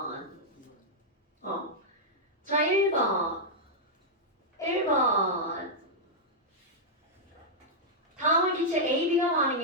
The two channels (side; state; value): both; normal; correlation -0.07